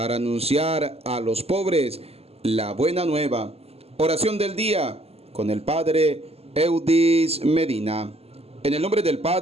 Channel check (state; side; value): late; left; 0.29 ms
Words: anunciar a los pobres la buena nueva. Oración del día con el Padre Eudis Medina. En el nombre del